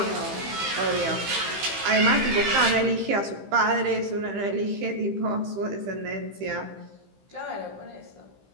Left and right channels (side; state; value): left; late; 15 ms